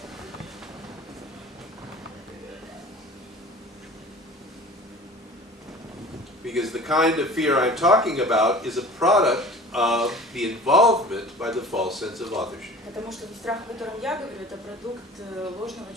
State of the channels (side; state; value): both; normal; correlation 0.42